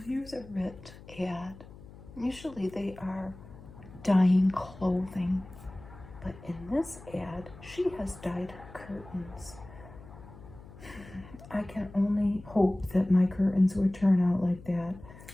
here's a Rit ad. Usually they are dyeing clothing, but in this ad, she has dyed her curtains. I can only hope that my curtains would turn out like that.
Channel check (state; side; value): noise; left; hum, 18 dB below the sound